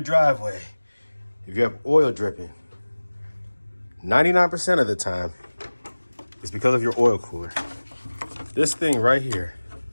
driveway, if you have oil dripping, 99% of the time, it's because of your oil cooler. This thing right here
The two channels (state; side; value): inverted; both; correlation -1.00